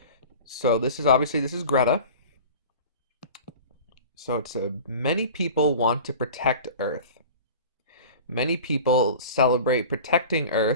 So this is Greta. So it's many people want to protect Earth. Many people celebrate protecting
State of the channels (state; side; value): inverted; both; correlation -0.38